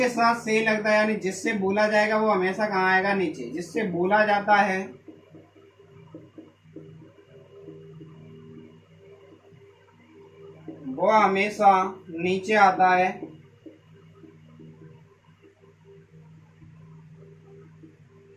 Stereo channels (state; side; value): identical; both; correlation 1.00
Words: साथ से लगता है यानी जिससे बोला जाएगा वो हमेशा कहाँ आएगा, नीचे। जिससे बोला जाता है वो हमेशा नीचे आता है।